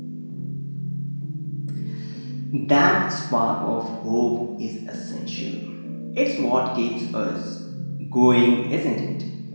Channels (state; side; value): inverted; both; correlation -1.00